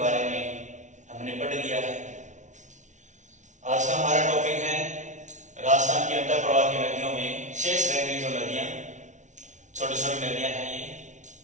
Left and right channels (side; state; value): left; late; 0.36 ms